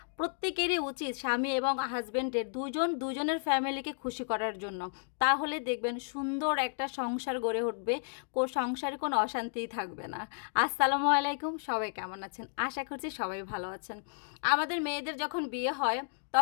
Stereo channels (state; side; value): silent; right; digital silence